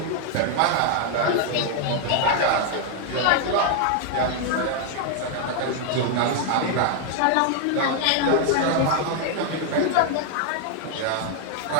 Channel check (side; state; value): both; different; correlation 0.00